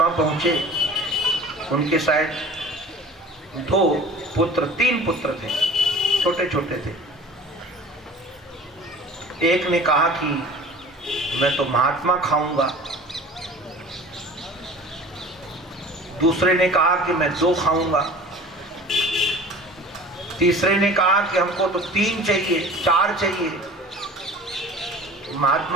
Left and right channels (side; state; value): both; normal; correlation 0.42